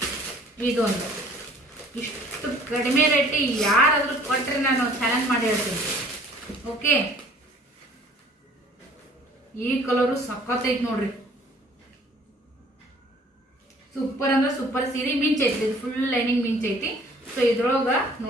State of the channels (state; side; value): normal; both; correlation 0.54